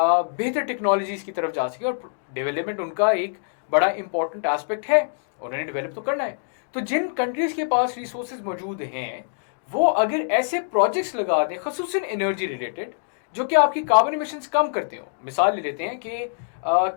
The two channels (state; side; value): silent; right; digital silence